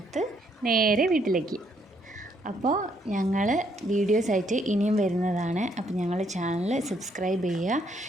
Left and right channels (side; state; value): both; normal; correlation 0.71